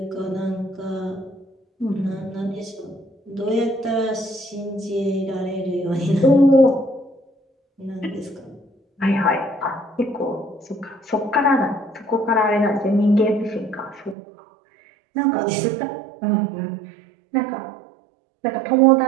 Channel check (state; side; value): drops out; left; at 14.2 s